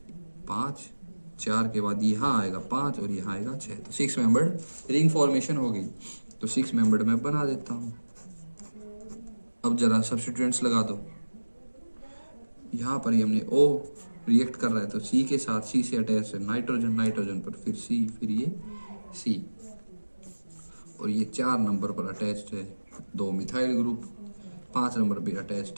5, 4 के बाद यहाँ आएगा 5 और यहाँ आएगा 6, तो 6 मेंबर्ड रिंग फॉर्मेशन हो गई। तो 6 मेंबर्ड मैं बना देता हूँ। अब जरा सब्स्टिट्यूएंट्स लगा दो, यहाँ पर ही हमने O रिएक्ट कर रहा है तो C के साथ, C से अटैच है नाइट्रोजन, नाइट्रोजन पर फिर C, फिर ये C, और ये 4 नंबर पर अटैच्ड है 2 मिथाइल ग्रुप, 5 नंबर पर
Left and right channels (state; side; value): inverted; both; correlation -1.00